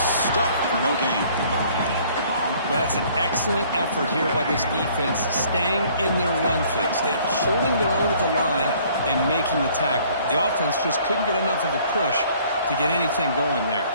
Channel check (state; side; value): inverted; both; correlation -0.58